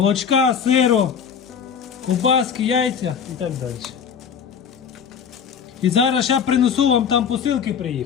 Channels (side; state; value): right; quieter; 7.2 dB